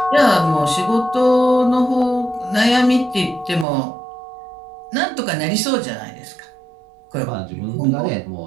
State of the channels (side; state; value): left; drops out; at 3.7 s